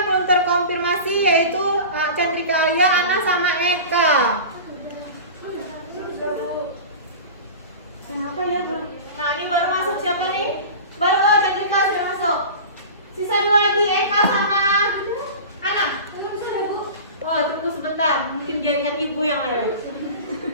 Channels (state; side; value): inverted; both; correlation -0.34